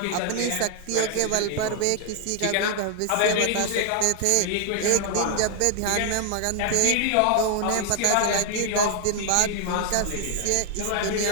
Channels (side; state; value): both; different; correlation 0.00